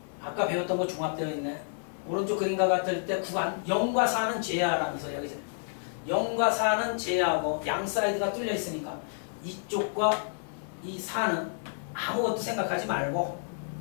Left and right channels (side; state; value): right; silent; 57 dB below the other